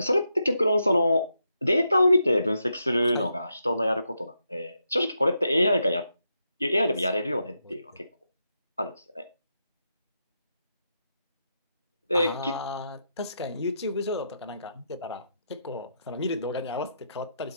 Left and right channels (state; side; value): inverted; both; correlation -0.83